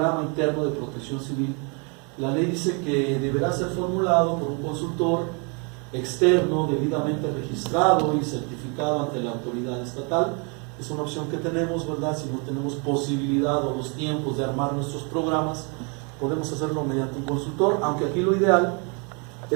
interno de protección civil. La ley dice que deberá ser formulado por un consultor externo debidamente registrado y certificado ante la autoridad estatal. Es una opción que tenemos, ¿verdad? Si no tenemos posibilidad o los tiempos de armar nuestros programas, podemos hacerlo mediante un consultor, aunque aquí lo ideal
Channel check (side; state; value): left; quieter; 34.4 dB